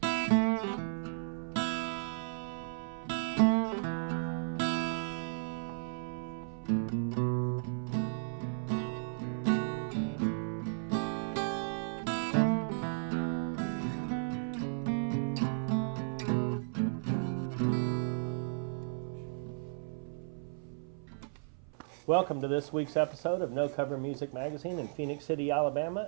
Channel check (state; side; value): silent; left; 55 dB below the other